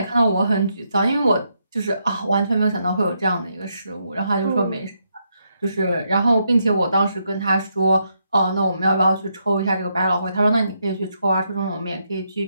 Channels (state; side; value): inverted; both; correlation -0.79